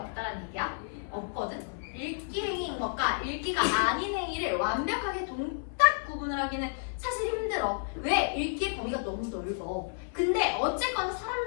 얘기야? 없거든? 읽기 행위인 것과 읽기가 아닌 행위를 완벽하게 동딱 구분을 하기는 사실 힘들어. 왜? 읽기의 범위가 너무 넓어. 근데 어쨌거나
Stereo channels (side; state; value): right; silent; 57 dB below the other